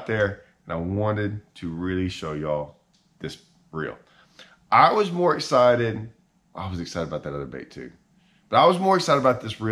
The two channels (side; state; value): both; identical; correlation 1.00